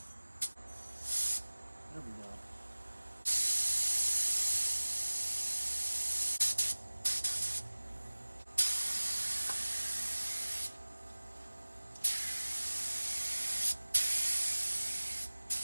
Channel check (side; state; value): both; inverted; correlation -1.00